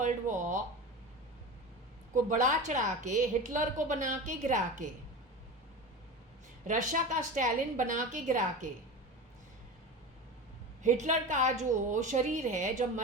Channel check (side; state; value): both; normal; correlation 0.28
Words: वॉर को बढ़ा चढ़ा के, हिटलर को बना के गिरा के, रशिया का स्टालिन बना के गिरा के, हिटलर का जो शरीर है जब